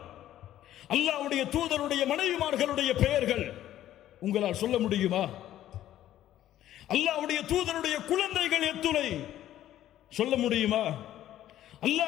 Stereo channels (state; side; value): quieter; right; 12.7 dB